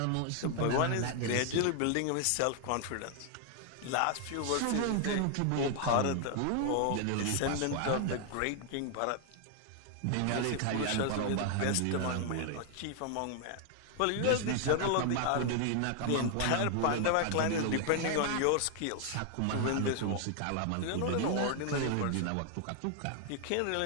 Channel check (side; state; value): both; different; correlation 0.00